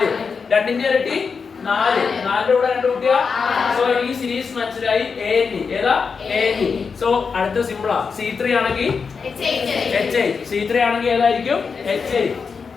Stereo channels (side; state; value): right; quieter; 5.4 dB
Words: 2ന്റെ ഇരട്ടി 4, 4ന്റെ കൂടെ 2 കൂട്ടിയ. സോ ഈ സീരീസ് മനസ്സിലായി. ANE ഏതാ? ANE. സോ അടുത്ത സിമ്പിളാ. C3 ആണെങ്കിൽ H8. C3 ആണെങ്കിൽ ഏതായിരിക്കും? H8.